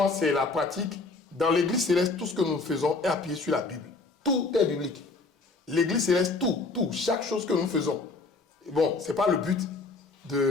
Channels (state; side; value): quieter; right; 3.7 dB